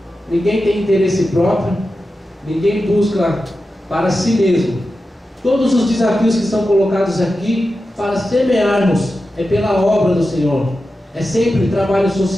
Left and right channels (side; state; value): both; normal; correlation 0.91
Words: ninguém tem interesse próprio, ninguém busca para si mesmo. Todos os desafios que são colocados aqui para semearmos é pela obra do Senhor. É sempre trabalho